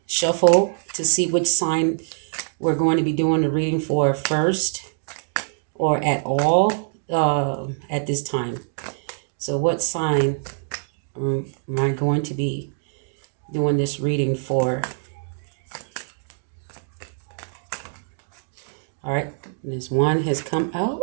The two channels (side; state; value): left; silent; digital silence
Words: shuffle to see which sign we're going to be doing the reading for first or at all at this time. So, what sign am I going to be doing this reading for? All right. This one has come out.